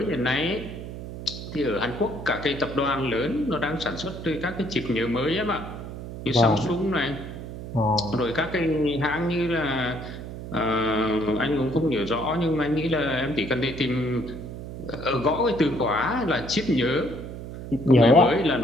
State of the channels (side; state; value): right; noise; hum, 10 dB below the sound